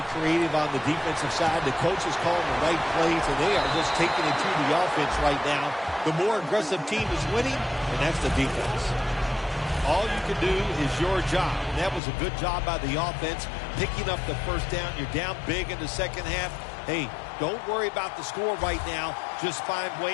creative on the defensive side. The coach is calling the right plays, and they are just taking it to the offense right now. The more aggressive team is winning, and that's the defense. All you can do is your job. And that was a good job by the offense, picking up the first down. You're down big in the second half. Hey, don't worry about the score right now. Just find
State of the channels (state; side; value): drops out; right; at 12.0 s